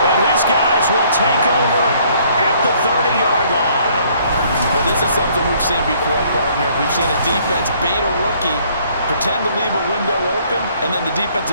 And his guys will take over at the 30-yard line. Well, this is something we've seen before, partner. We've seen a defense bait a rookie, pretend to leave a window open, and then the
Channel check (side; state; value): both; inverted; correlation -0.62